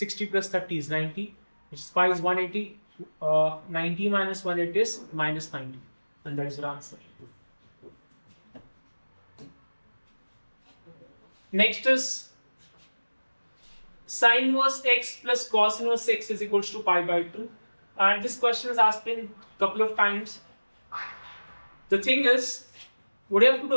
plus 30 is 90, which is pi is 180. 90 minus 180 is minus 90. And that is your answer. Next is sin inverse x plus cos inverse x is equals to pi by 2. And this question is asked in a couple of times. The thing is, what you have to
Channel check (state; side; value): inverted; both; correlation -1.00